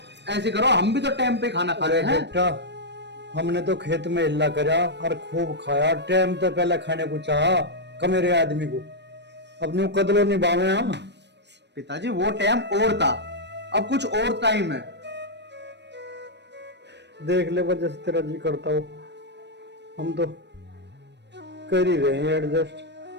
ऐसे करो, हम भी तो टाइम पे खाना खा रहे हैं। बेटा, हमने तो खेत में हिल्ला करा और खूब खाया, टाइम तो पहले खाने को चाहा कमेरे आदमी को, अब न्यू कदलो निभावे हम। पिताजी वो टाइम और था, अब कुछ और टाइम है। देख ले वजह से तेरा जी करता हो, हम तो कर ही रहे हैं एडजस्ट।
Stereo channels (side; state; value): left; late; 0.50 ms